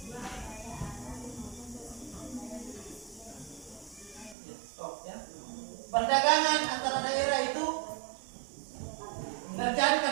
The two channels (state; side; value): drops out; left; at 4.4 s